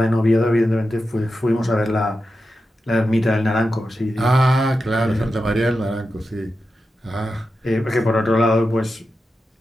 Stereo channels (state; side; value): normal; both; correlation 0.90